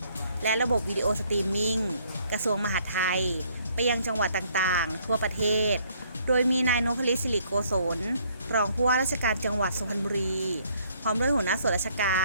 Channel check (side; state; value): both; inverted; correlation -0.64